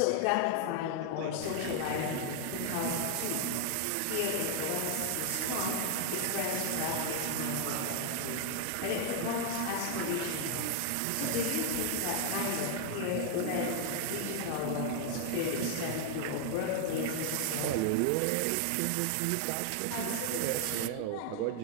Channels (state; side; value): different; both; correlation 0.00